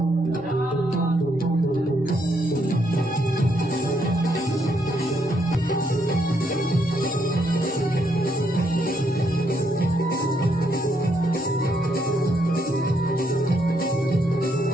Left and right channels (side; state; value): both; normal; correlation 0.75